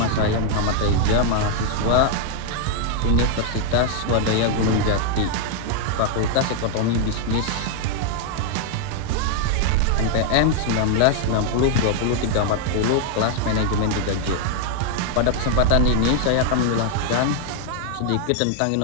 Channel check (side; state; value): both; different; correlation 0.00